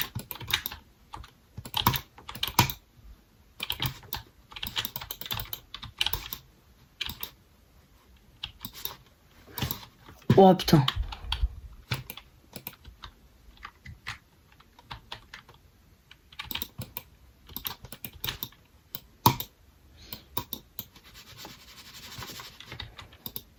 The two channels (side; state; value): both; identical; correlation 1.00